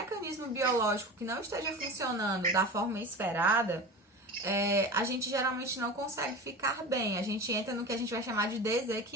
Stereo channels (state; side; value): normal; both; correlation 0.31